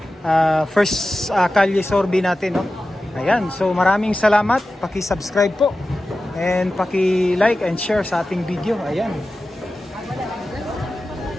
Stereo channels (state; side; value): normal; both; correlation 0.94